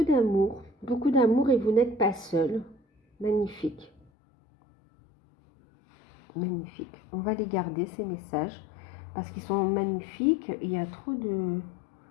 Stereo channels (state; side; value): drops out; right; at 4.0 s